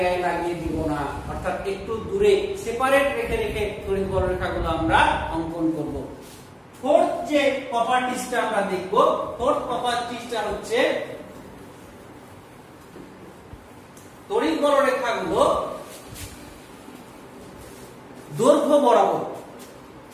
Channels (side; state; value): both; identical; correlation 1.00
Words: গায়ে লাগিয়ে দিব না। অর্থাৎ একটু দূরে সেপারেট রেখে রেখে তড়িৎ বলরেখাগুলো আমরা অঙ্কন করব। ফোর্থ যে প্রপার্টিজটা আমরা দেখব, ফোর্থ প্রপার্টিজটা হচ্ছে তড়িৎ বলরেখাগুলো দৈর্ঘ্য বরাবর